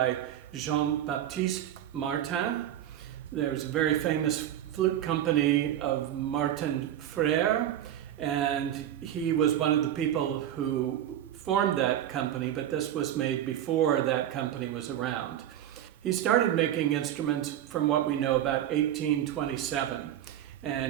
Baptiste Martin. There's a very famous flute company of Martin Frère, and he was one of the people who formed that company, but this was made before that company was around. He started making instruments from what we know about 1827,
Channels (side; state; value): left; quieter; 11.4 dB